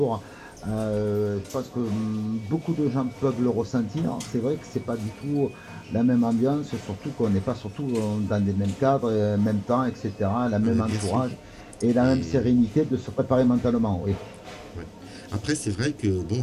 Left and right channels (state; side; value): identical; both; correlation 1.00